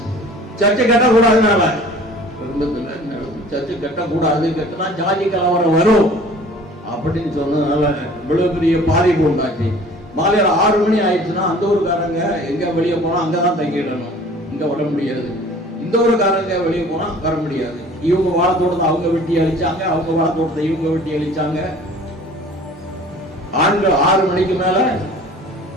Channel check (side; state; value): both; normal; correlation 0.48